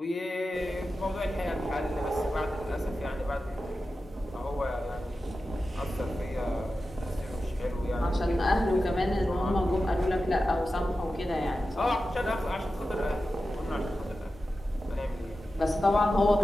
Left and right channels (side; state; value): both; normal; correlation 0.93